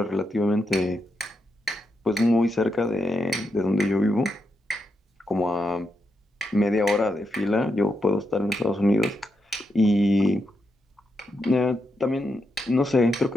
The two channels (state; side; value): normal; both; correlation 0.84